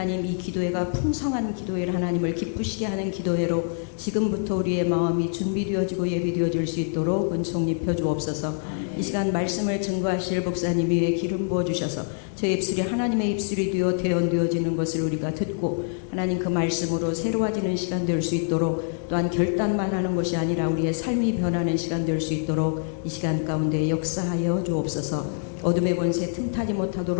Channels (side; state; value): right; silent; digital silence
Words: 이 기도회가 풍성한 기도회를 하나님을 기쁘시게 하는 기도회로 지금부터 우리의 마음이 준비되어지고 예비되어질 수 있도록 은총 입혀 주옵소서. 이 시간 말씀을 증거하실 목사님 위에 기름 부어주셔서 저희 입술이 하나님의 입술이 되어 대언되어지는 것을 우리가 듣고 하나님 그 말씀으로 새로워지는 시간 될 수 있도록 또한 결단만 하는 것이 아니라 우리의 삶이 변하는 시간 될 수 있도록 이 시간 가운데 역사하여 주옵소서. 어둠의 권세 틈타지